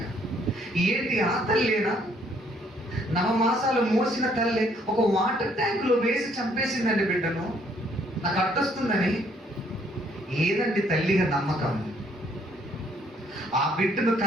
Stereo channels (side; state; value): both; normal; correlation 0.66